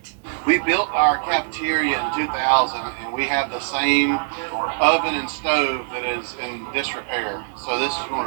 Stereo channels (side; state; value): left; silent; 62 dB below the other